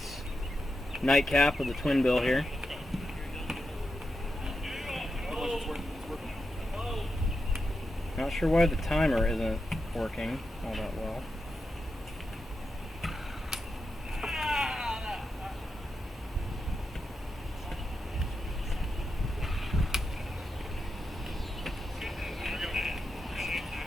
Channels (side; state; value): both; normal; correlation 0.88